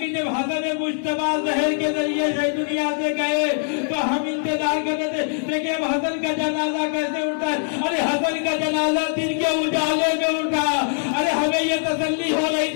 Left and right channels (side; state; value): right; silent; digital silence